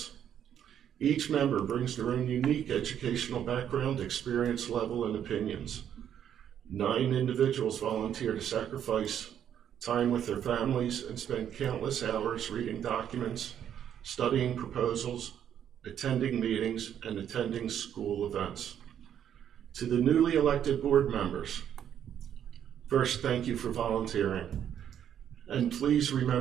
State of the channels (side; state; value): left; quieter; 9.5 dB